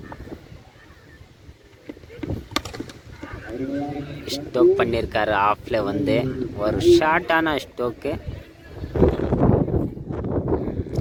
ஸ்டோக் பண்ணியிருக்காரு. ஆஃபில் வந்து ஒரு ஷார்ட்டான ஸ்டோக்கு.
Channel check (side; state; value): both; identical; correlation 1.00